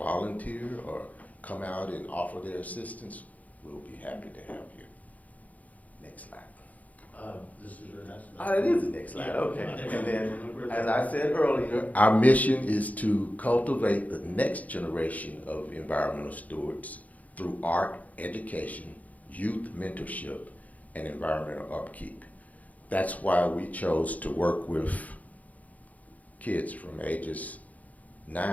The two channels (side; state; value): right; late; 0.075 ms